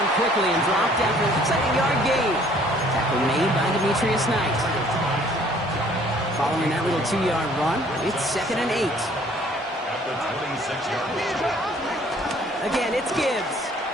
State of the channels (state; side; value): normal; both; correlation 0.58